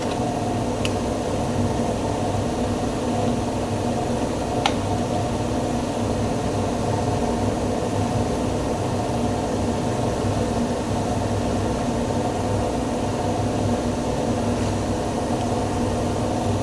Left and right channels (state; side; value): identical; both; correlation 1.00